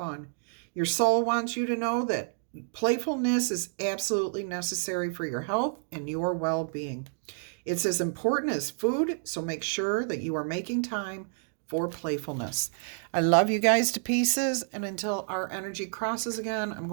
Your soul wants you to know that playfulness is absolutely necessary for your health and your well-being. It's as important as food, so make sure that you are making time for playfulness. I love you guys to pieces, and until our energy crosses again, I'm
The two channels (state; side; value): silent; left; digital silence